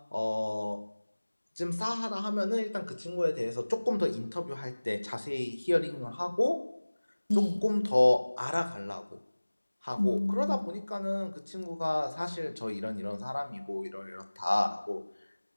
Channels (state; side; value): inverted; both; correlation -1.00